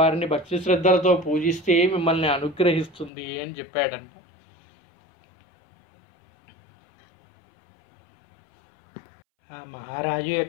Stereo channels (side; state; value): right; drops out; at 3.1 s